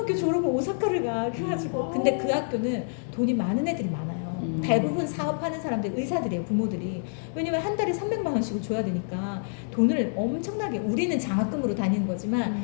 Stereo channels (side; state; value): right; silent; digital silence